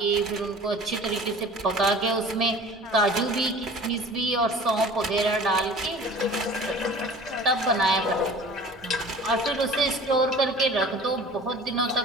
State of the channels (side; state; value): both; normal; correlation 0.44